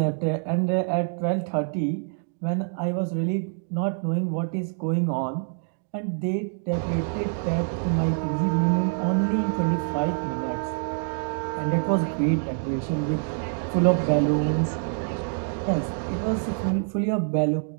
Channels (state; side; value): silent; left; 61 dB below the other